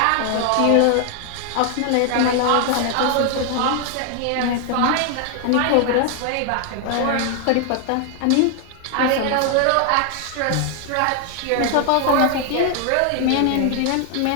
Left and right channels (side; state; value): both; different; correlation 0.00